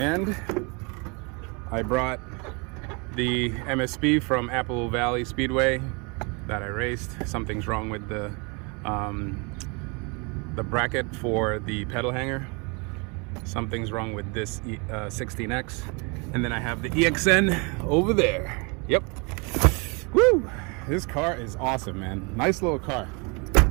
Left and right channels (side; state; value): left; quieter; 31.1 dB